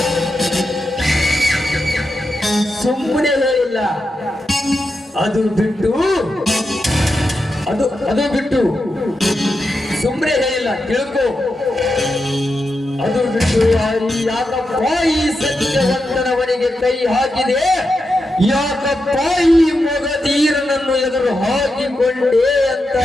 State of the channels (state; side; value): normal; both; correlation 0.87